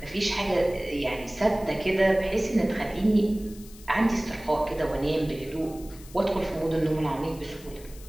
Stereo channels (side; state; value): left; noise; hiss, 20 dB below the sound